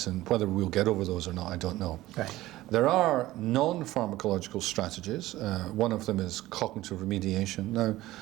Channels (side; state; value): left; quieter; 16.6 dB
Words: and whether we'll get over those or not, I don't know. Right. There are non-pharmacological strategies. One of them is cognitive remediation. Now,